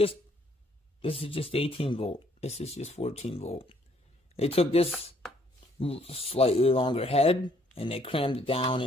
18 volt. This is just 14 volt. They took this slightly longer head and they crammed it down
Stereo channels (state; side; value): normal; both; correlation 0.65